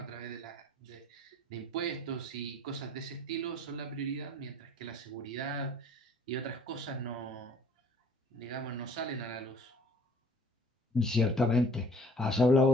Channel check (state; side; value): normal; both; correlation 0.53